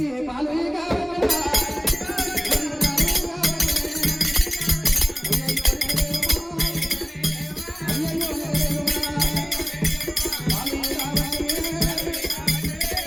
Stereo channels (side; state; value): both; identical; correlation 1.00